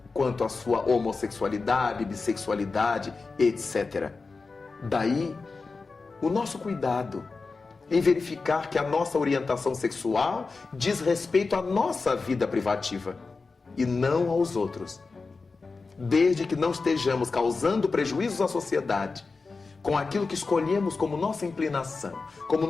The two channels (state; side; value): quieter; right; 4.2 dB